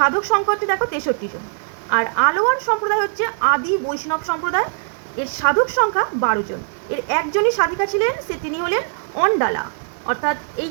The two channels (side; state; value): left; silent; 65 dB below the other